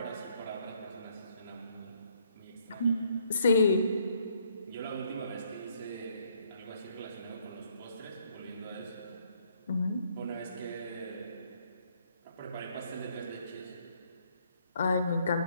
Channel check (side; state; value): both; inverted; correlation -0.68